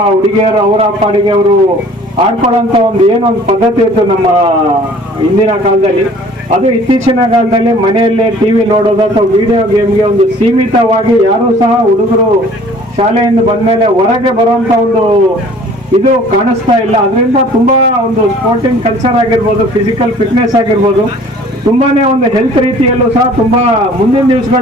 ಹುಡುಗಿಯರು ಅವರ ಪಾಡಿಗೆ ಅವರು ಆಡ್ಕೊಳ್ಳೋಂಥ ಒಂದು ಏನೊಂದು ಪದ್ಧತಿ ಇತ್ತು ನಮ್ಮ ಹಿಂದಿನ ಕಾಲದಲ್ಲಿ. ಅದು ಇತ್ತೀಚಿನ ಕಾಲದಲ್ಲಿ ಮನೆಯಲ್ಲೇ ಟಿವಿ ನೋಡೋದು ಅಥವಾ ವಿಡಿಯೋ ಗೇಮ್ಗೆ ಒಂದು ಸೀಮಿತವಾಗಿ ಯಾರೂ ಸಹ ಹುಡುಗರು ಶಾಲೆಯಿಂದ ಬಂದಮೇಲೆ ಹೊರಗೆ ಬರುವಂಥ ಒಂದು ಇದು ಕಾಣಿಸ್ತಾ ಇಲ್ಲ. ಅದರಿಂದ ತುಂಬಾ ಒಂದು ಸ್ಪೋರ್ಟಿಂಗ್ ಕಲ್ಚರ್ ಆಗಿರ್ಬೋದು, ಫಿಸಿಕಲ್ ಫಿಟ್ನೆಸ್ ಆಗಿರ್ಬೋದು, ತುಂಬಾನೇ ಒಂದು ಹೆಲ್ತ್ ರೀತಿಯಲ್ಲೂ ಸಹ ತುಂಬಾ ಮುಂದಿನ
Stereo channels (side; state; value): both; normal; correlation 0.51